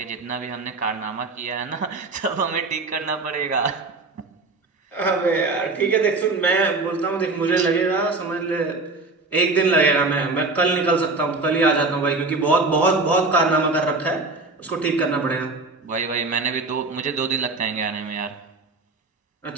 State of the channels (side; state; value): left; quieter; 3.6 dB